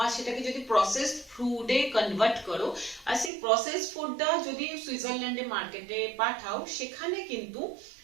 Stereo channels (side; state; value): left; drops out; at 3.3 s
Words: আর সেটাকে যদি প্রসেসড ফুডে কনভার্ট করো, আর সেই প্রসেসড ফুডটা যদি সুইজারল্যান্ডে মার্কেটে পাঠাও, সেখানে কিন্তু